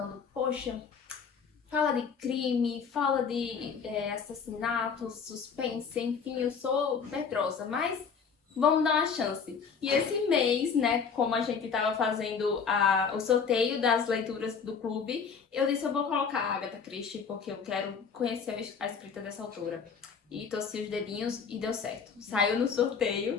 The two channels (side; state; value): right; quieter; 6.1 dB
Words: poxa, fala de crime, fala de assassinato, suspense, enfim, eu sou medrosa, mas vamos dar uma chance. E esse mês, como a gente estava fazendo o sorteio das leituras do clube, eu disse, eu vou colocar a Agatha Christie, porque eu quero conhecer a escrita dessa autora. E torci os dedinhos e deu certo. Saiu no